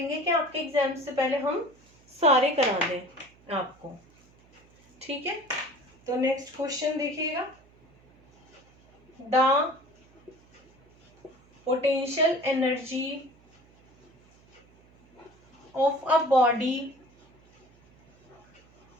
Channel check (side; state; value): right; noise; hum, 29 dB below the sound